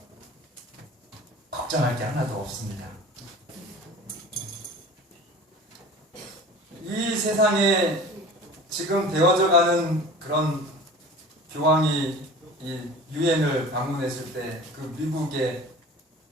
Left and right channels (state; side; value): normal; both; correlation 0.40